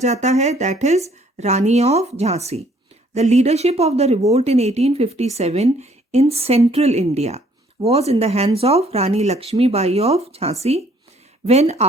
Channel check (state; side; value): normal; both; correlation 0.62